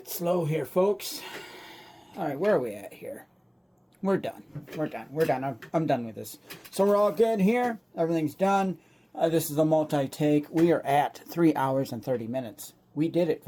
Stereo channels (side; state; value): both; identical; correlation 1.00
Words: slow here, folks. All right, where are we at here? We're done. We're done. We're done. I'm done with this. So we're all good here. Everything's done. This is a multi-take. We are at 3 hours and 30 minutes. We did it,